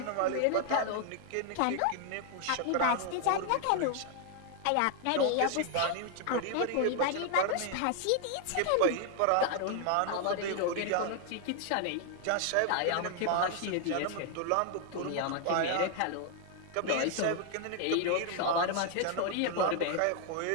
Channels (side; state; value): both; different; correlation 0.00